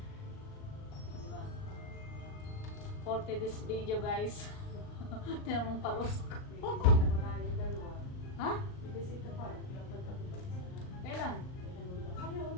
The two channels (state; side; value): late; right; 38 ms